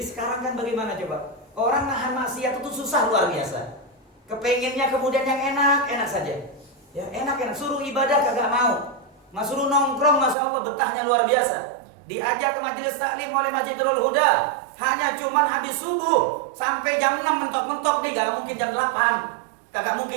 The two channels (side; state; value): left; drops out; at 10.4 s